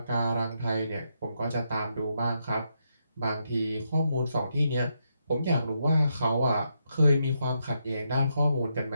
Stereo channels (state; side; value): inverted; both; correlation -0.80